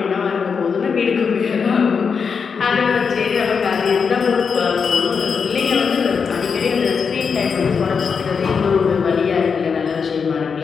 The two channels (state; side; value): quieter; right; 5.9 dB